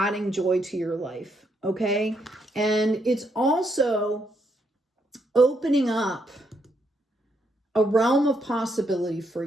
joy to your life, okay? And it's also opening up a realm of possibility for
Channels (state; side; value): normal; both; correlation 0.76